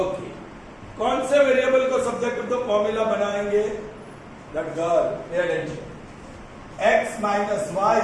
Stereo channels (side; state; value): both; identical; correlation 1.00